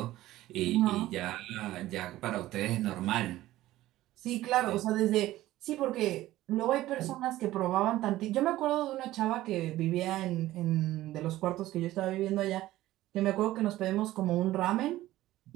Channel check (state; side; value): quieter; left; 15.6 dB